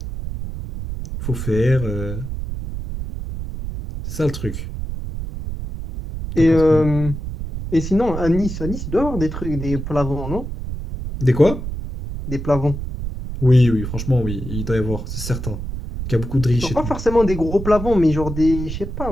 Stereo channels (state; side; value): noise; right; rumble, 6 dB below the sound